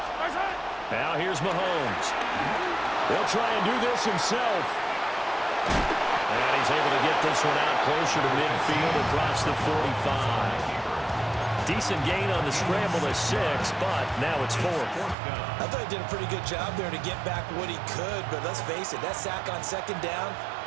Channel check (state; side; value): drops out; left; at 15.2 s